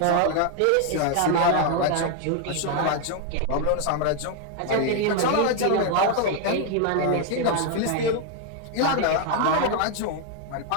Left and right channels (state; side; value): different; both; correlation 0.00